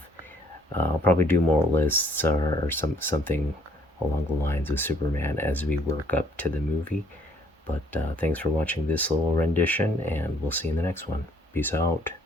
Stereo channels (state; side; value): normal; both; correlation 0.64